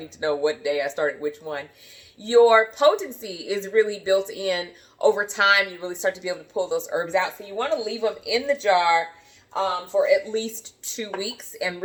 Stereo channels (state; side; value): identical; both; correlation 1.00